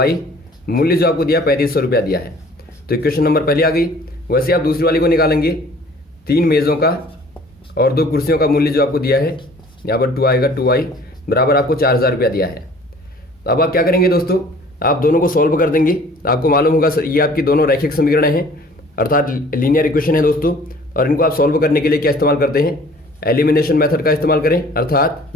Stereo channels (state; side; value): normal; both; correlation 0.51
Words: मूल्य जो आपको दिया 3500 रुपया दिया है। तो इक्वेशन नंबर पहले आ गई। वैसे आप दूसरी वाली को निकालेंगे, 3 मेज़ों का और 2 कुर्सियों का मूल्य जो आपको दिया है, यहाँ पर 2 आएगा, 2y बराबर आपको 4000 रुपया दिया है। अब आप क्या करेंगे दोस्तों, आप दोनों को सॉल्व कर देंगे। आपको मालूम होगा ये आपकी दोनों रैखिक समीकरण हैं अर्थात लीनियर इक्वेशन है दोस्तों, और इनको आप सॉल्व करने के लिए क्या इस्तेमाल करते हैं, एलिमिनेशन मेथड का इस्तेमाल करें, अर्थात